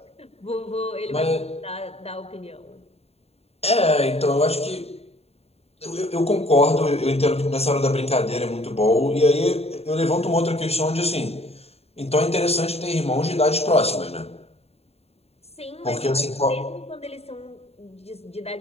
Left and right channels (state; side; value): late; right; 0.30 ms